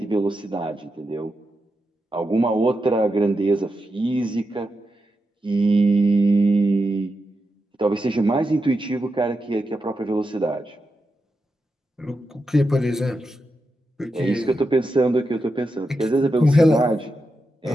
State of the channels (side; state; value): both; normal; correlation 0.87